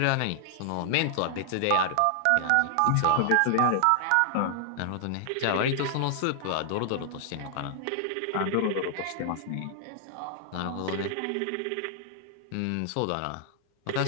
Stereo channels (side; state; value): both; different; correlation 0.00